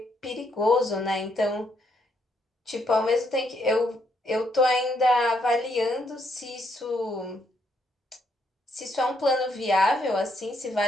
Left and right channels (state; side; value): normal; both; correlation 0.74